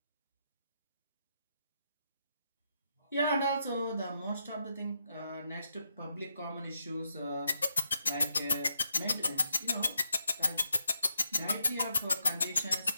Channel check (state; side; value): inverted; both; correlation -0.80